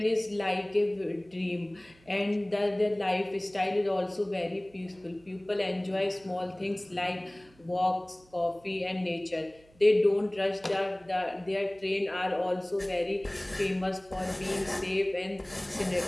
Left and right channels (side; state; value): right; noise; hum, 28 dB below the sound